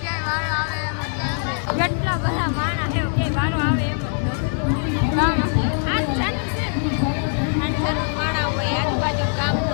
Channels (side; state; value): right; silent; 58 dB below the other